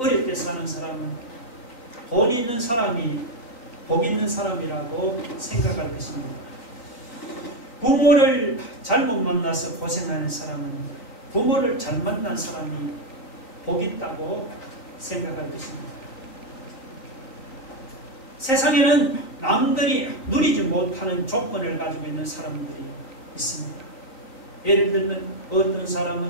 사는 사람은 돈 있는 사람이 복 있는 사람이라고 생각할 것입니다. 부모를 잘못 만나서 고생하는 사람은 부모를 잘 만난 사람이 복 있다고 생각할 것입니다. 세상에는 남들이 누리지 못하는 조건을 가지고 있는 사람들이 있습니다. 예를 들면 어떤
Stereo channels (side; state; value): right; late; 3.9 ms